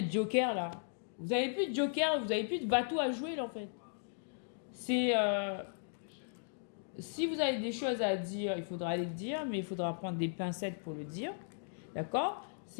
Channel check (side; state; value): right; silent; digital silence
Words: le joker là. Vous avez plus de joker, vous avez plus de bateau à jouer là en fait. C'est... Si vous avez des choses à dire, il faudra les dire, mais il faudra prendre des pincettes pour le dire. D'accord?